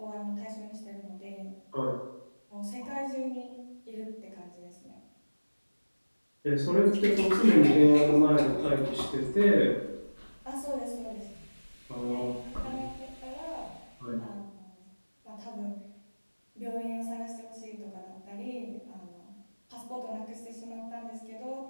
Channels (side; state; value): both; inverted; correlation -1.00